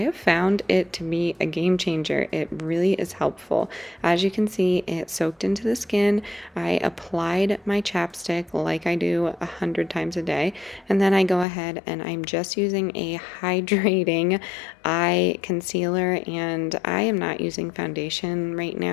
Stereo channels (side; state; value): right; drops out; at 11.5 s